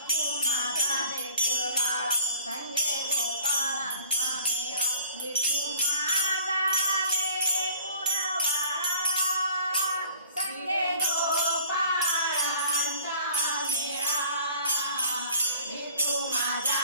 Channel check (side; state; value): both; inverted; correlation -0.50